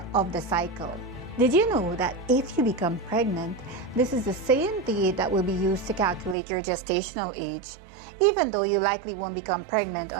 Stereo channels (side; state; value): left; drops out; at 6.4 s